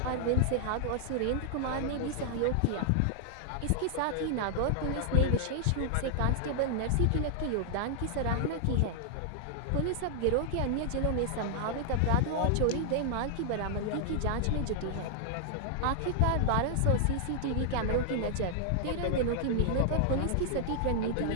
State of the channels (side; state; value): both; different; correlation -0.01